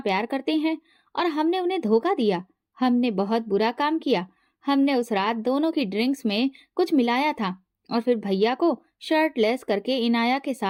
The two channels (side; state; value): both; identical; correlation 1.00